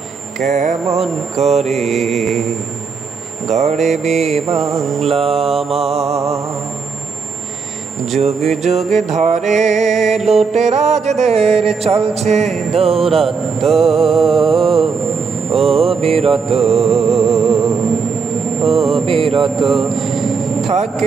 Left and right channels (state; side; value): quieter; left; 5.2 dB